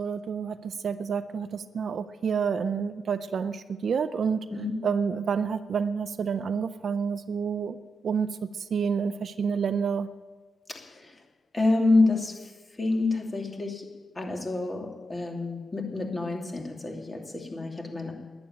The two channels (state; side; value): normal; both; correlation 0.85